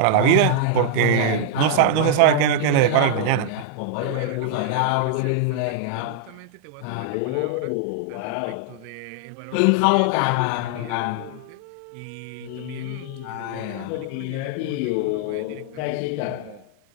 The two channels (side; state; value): both; different; correlation -0.01